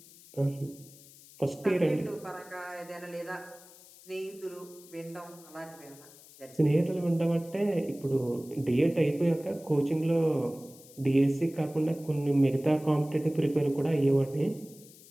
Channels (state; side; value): noise; left; hiss, 22 dB below the sound